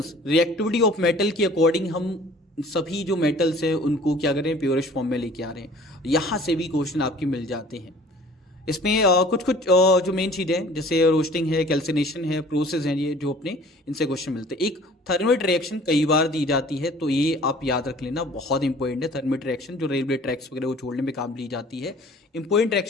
रिएक्टिविटी ऑफ मेटल की अकॉर्डिंग हम सभी जो मेटल्स हैं उनको क्या करें, प्योरेस्ट फॉर्म में लेके आ रहे हैं। यहाँ से भी क्वेश्चन आपके मिल जाते हैं। इसमें कुछ जो मेन चीजें हैं, जैसे रोस्टिंग है, कैल्सिनेशन है, प्रोसेस है, ये जो अपने इनसे क्वेश्चन मिलते हैं। एक थर्मेट रिएक्शन कई बार दी जाती है, तो ये आप याद रख लेना, बहुत इंपॉर्टेंट है। थर्मेट रिएक्शन जो रेलवे ट्रैक्स वगैरह को छोड़ने में काम ली जाती है, इंपॉर्टेंट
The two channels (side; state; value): both; normal; correlation 0.50